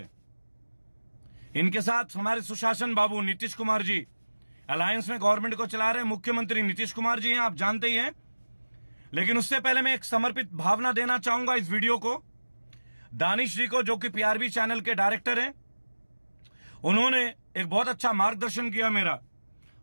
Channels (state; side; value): inverted; both; correlation -1.00